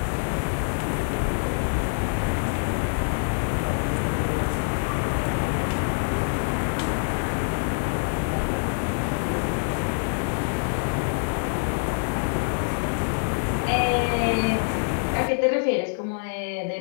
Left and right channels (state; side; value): silent; right; 61 dB below the other